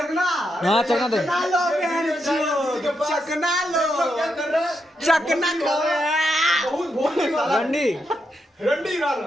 हाँ चकना दे, चकना लो बहन चोद, चकना लो, चकना लो। रंडी रंडी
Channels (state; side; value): normal; both; correlation 0.83